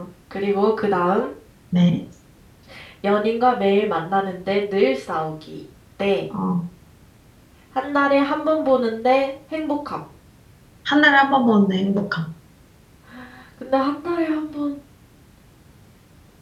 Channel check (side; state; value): both; identical; correlation 1.00